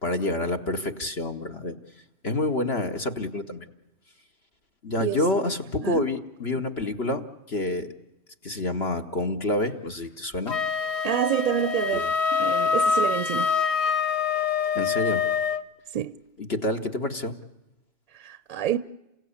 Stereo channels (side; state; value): right; late; 3.0 ms